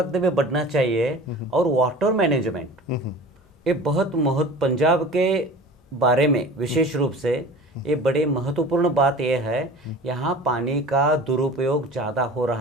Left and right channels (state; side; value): normal; both; correlation 0.39